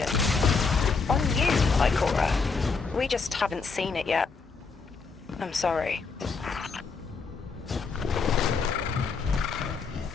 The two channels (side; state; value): right; quieter; 4.8 dB